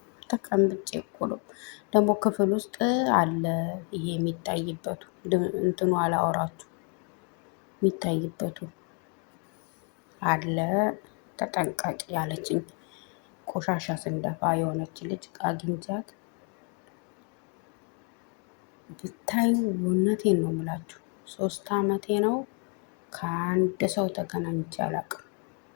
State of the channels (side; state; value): right; quieter; 36.8 dB